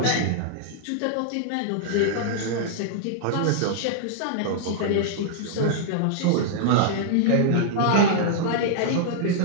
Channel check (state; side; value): different; both; correlation -0.01